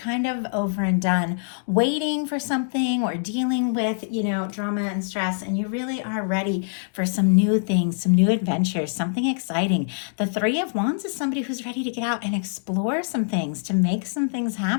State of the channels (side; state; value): right; silent; digital silence